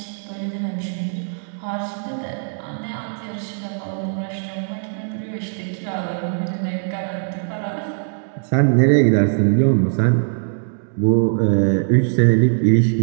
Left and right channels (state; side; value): silent; left; digital silence